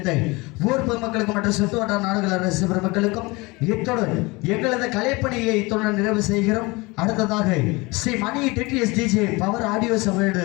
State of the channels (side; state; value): right; quieter; 24.4 dB